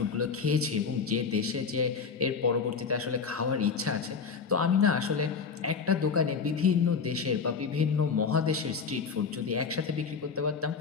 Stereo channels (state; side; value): quieter; right; 5.6 dB